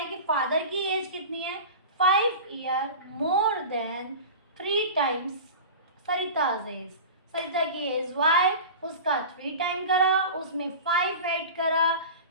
कि फादर की एज कितनी है, 5 year more than 3 times Sarita's age. Sarita की एज y, उसका 3 टाइम करा, उसमें 5 ऐड करा,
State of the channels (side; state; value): both; inverted; correlation -0.33